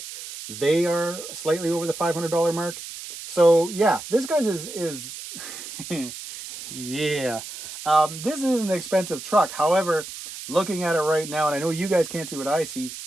they are slightly over the $500 mark. So yeah, this guy's is yeah. This is an expensive truck. However, looking at it right now, and I know you guys can't see what I see,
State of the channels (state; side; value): noise; right; hiss, 11 dB below the sound